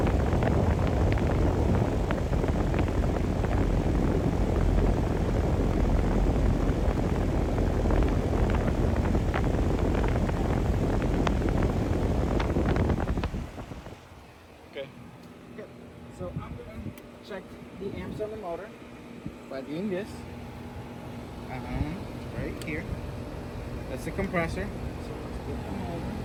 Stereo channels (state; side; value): identical; both; correlation 1.00